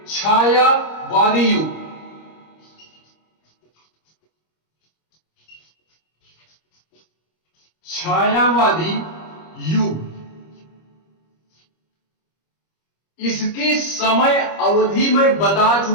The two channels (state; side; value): late; right; 25 ms